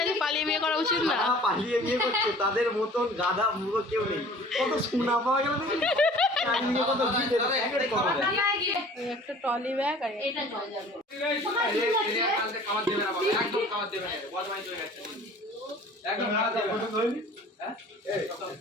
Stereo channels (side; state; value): both; normal; correlation 0.48